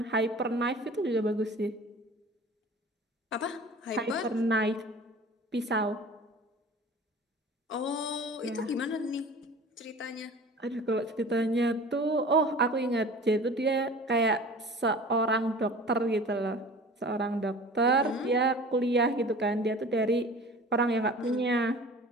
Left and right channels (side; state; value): both; normal; correlation 0.42